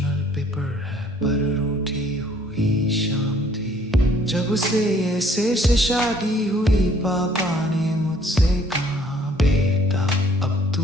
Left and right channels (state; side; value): normal; both; correlation 0.59